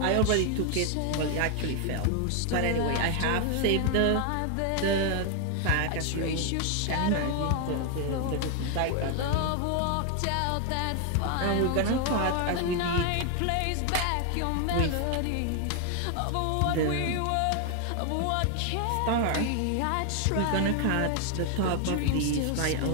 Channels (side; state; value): both; different; correlation 0.00